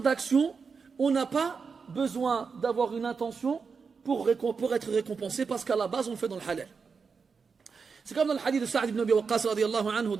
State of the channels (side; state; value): left; quieter; 5.4 dB